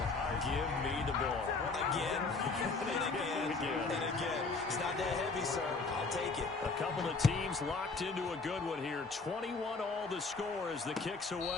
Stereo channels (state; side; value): quieter; right; 4.0 dB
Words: Give me the ball. Again, and again, and again. It's not that heavy, sir. I'll take it. A couple of teams locked into a good one here. 21 all the score as the kick's